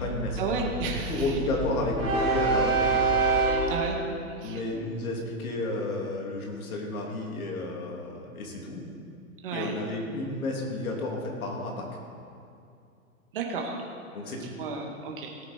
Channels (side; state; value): both; normal; correlation 0.04